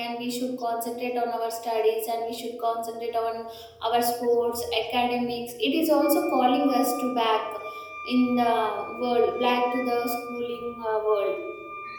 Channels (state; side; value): identical; both; correlation 1.00